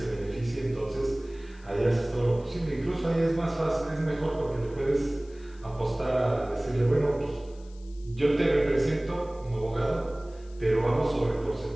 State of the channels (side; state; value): left; noise; hiss, 28 dB below the sound